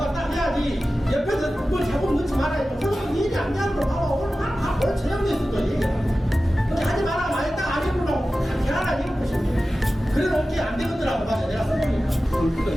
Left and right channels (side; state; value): both; normal; correlation 0.95